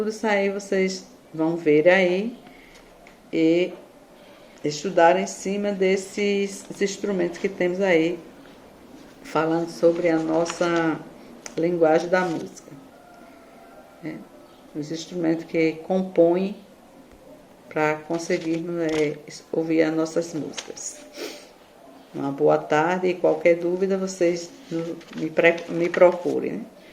isso aí vocês vão ver aí e estudar em cima desses instrumentos que temos aí, falando sobre a nossa linguagem da música. Os instrumentos que compõem para conseguirmos ouvir as nossas músicas. Uma boa tarde e qualquer dúvida vocês me procurem.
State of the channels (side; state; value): both; identical; correlation 1.00